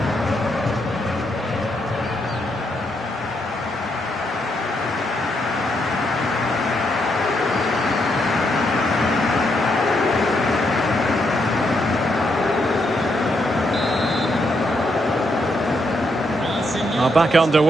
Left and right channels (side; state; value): both; normal; correlation 0.78